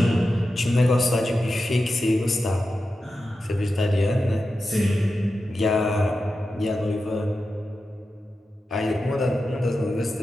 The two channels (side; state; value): both; normal; correlation 0.91